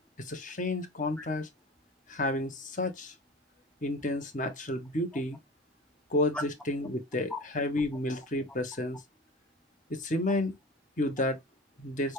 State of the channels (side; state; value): both; normal; correlation 0.35